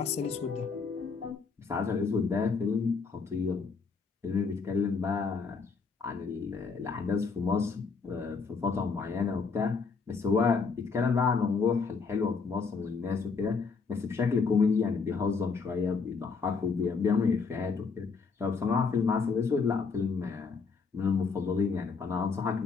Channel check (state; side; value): quieter; right; 5.0 dB